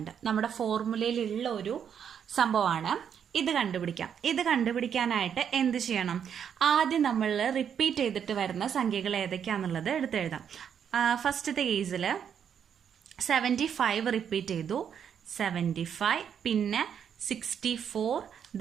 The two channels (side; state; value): left; quieter; 8.1 dB